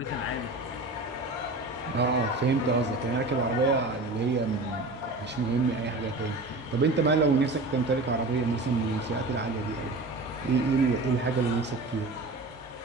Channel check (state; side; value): quieter; left; 3.0 dB